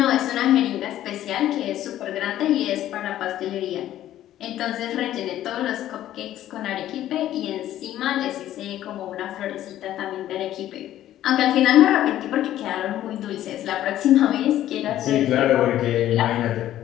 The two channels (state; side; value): quieter; right; 12.8 dB